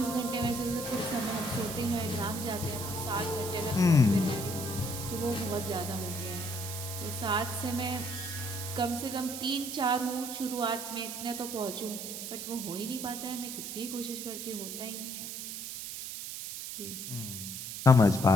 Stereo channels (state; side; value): noise; right; hiss, 7 dB below the sound